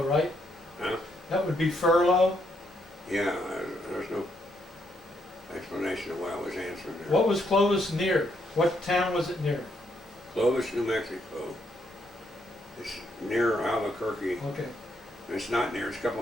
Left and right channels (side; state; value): both; normal; correlation 0.75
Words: right? Huh? That would be furlough? Yeah, there's no explanation of why I was answering there. What was Clovis near? What town was it near? Clovis, New Mexico. It's near Albuquerque. Okay. It's not near, it's a couple